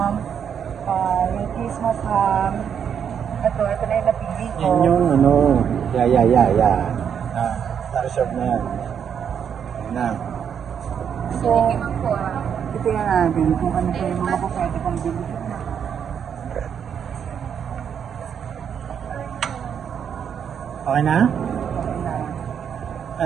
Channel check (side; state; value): left; quieter; 8.0 dB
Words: yung Christmas ham. Ito na yung napili ko. Yan yung ano, na-reserve na yan. Yan na. So, titingnan natin kung ano pa yung mga pwede pang bilhin. Okay na?